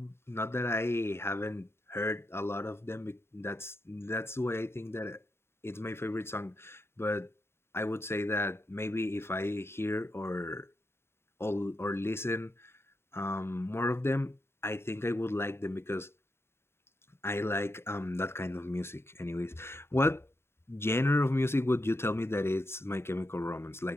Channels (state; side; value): late; right; 0.12 ms